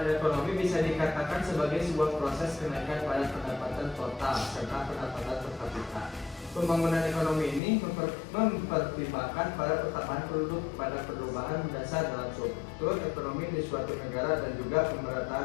ekonomi bisa dikatakan sebagai sebuah proses kenaikan pada pendapatan total serta pendapatan per kapita. Pembangunan ekonomi ini mempertimbangkan pada pertambahan penduduk, pada perubahan mendasar dalam struktur ekonomi di suatu negara, dan juga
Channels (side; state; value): right; drops out; at 7.6 s